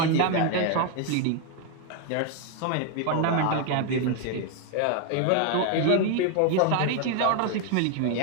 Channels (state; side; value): different; both; correlation 0.01